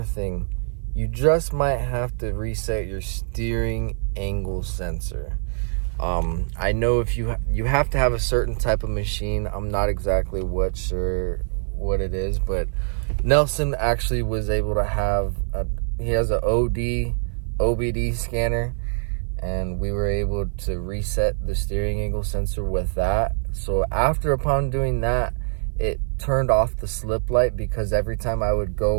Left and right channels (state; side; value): silent; left; 58 dB below the other